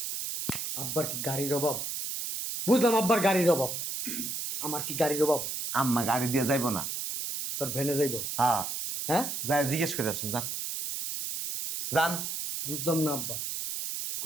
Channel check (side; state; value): right; noise; hiss, 4 dB below the sound